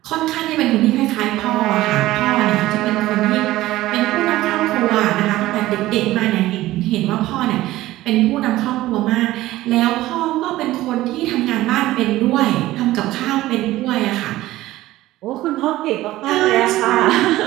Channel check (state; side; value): quieter; left; 16.4 dB